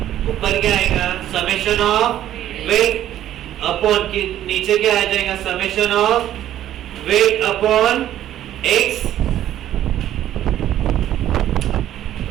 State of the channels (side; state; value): left; quieter; 12.1 dB